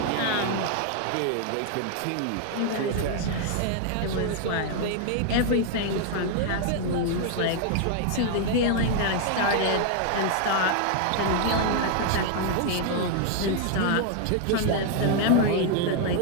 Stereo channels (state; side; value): different; both; correlation 0.00